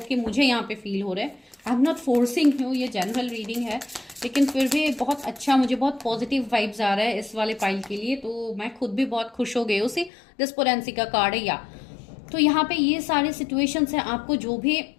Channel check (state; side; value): drops out; right; at 10.1 s